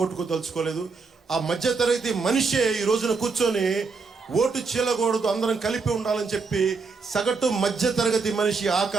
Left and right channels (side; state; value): left; quieter; 4.6 dB